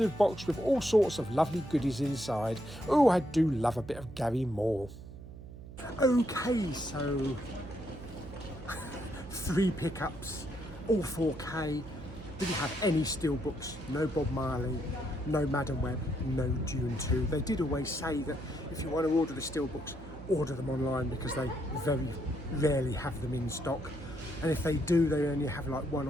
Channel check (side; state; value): right; noise; hum, 14 dB below the sound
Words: box with all sorts of lovely goodies inside. Oh, I do love a bit of Gary Moore. Okay, so 3 pickups, all 4K. Didn't have any steelbooks, no Bob Marley, no Madam Web, no Dune 2. They did always say that if you want to order the steelbooks, order them online because they very rarely have them in stock. And if they do, they only have like 1